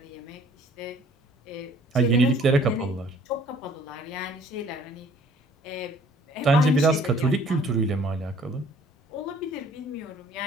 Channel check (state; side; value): normal; both; correlation 0.56